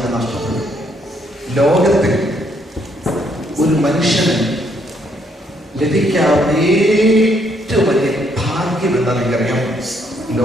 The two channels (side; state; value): both; normal; correlation 0.71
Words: നഷ്ടപ്പെടും. ലോകത്തിൽ ഒരു മനുഷ്യന് ലഭിക്കാവുന്ന ഏറ്റവും വലിയ ഭാഗ്യം എന്താ നിങ്ങൾക്കറിയാം?